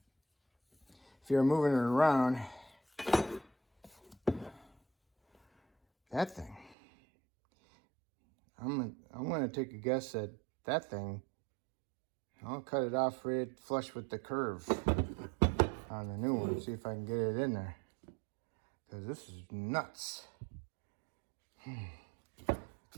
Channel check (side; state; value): left; drops out; at 6.8 s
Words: If you're moving it around, that thing, I'm gonna take a guess that that thing, I'll cut it off right flush with the curve on the new one. See if I can get it in there, because this is nuts.